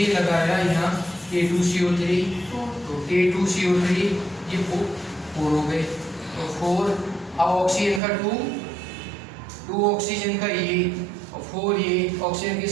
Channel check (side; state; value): left; drops out; at 8.0 s